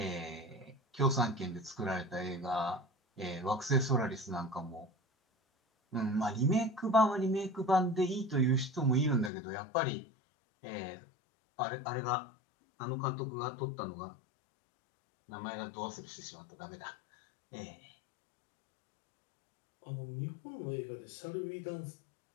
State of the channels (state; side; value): drops out; right; at 9.3 s